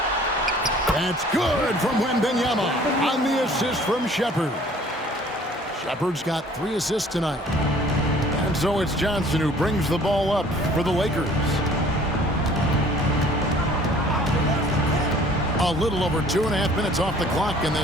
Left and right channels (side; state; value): both; normal; correlation 0.53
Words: That's good from Wembanyama on the assist from Shepard. Shepard's got 3 assists tonight. And so it's Johnson who brings the ball up for the Lakers. A little over 2.5 minutes off the clock in